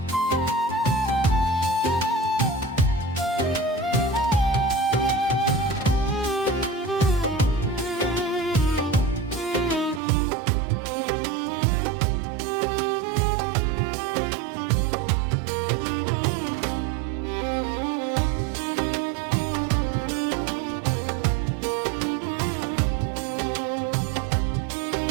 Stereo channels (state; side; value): drops out; left; at 10.0 s